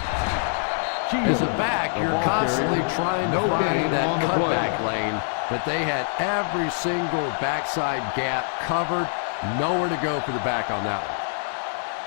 As a back, you're constantly trying to find that cutback lane, but they had every single backside gap covered. Nowhere to go for the back on that one.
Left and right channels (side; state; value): right; silent; digital silence